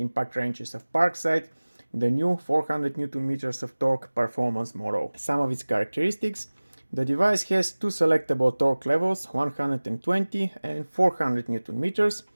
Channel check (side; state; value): both; inverted; correlation -1.00